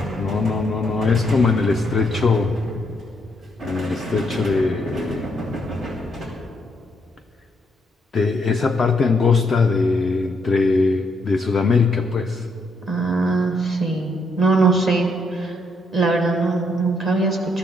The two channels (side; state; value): both; normal; correlation 0.74